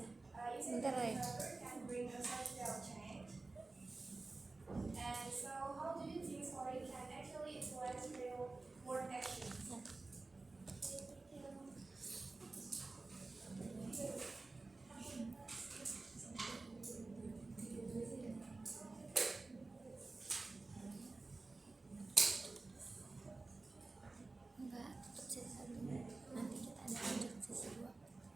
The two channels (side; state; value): left; quieter; 3.5 dB